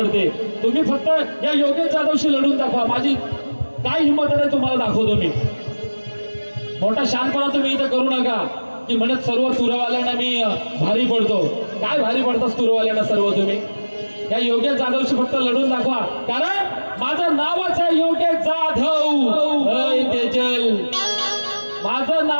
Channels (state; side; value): inverted; both; correlation -1.00